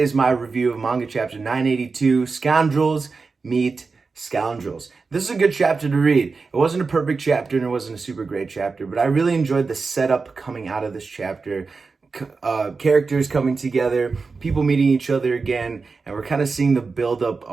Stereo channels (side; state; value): left; quieter; 4.4 dB